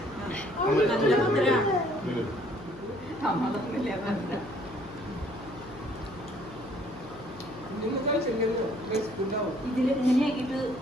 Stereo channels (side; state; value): left; noise; hum, 18 dB below the sound